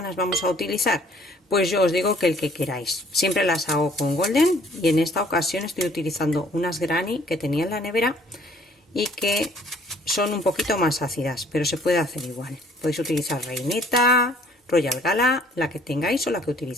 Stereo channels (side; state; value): both; normal; correlation 0.59